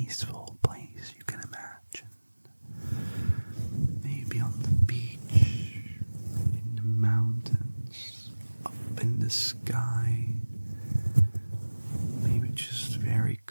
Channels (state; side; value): inverted; both; correlation -1.00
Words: place you can imagine. Maybe on the beach, in the mountains, up in the sky. Maybe just very